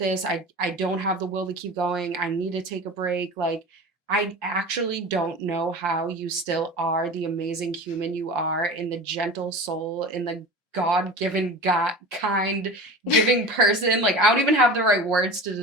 I don't have the will to keep going. I need to take a break. Like, I actually don't know how you still are the amazing human you are in the gentle soul, in the God-given, God kind giving person. Like, I don't even have the right words to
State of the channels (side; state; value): both; normal; correlation 0.34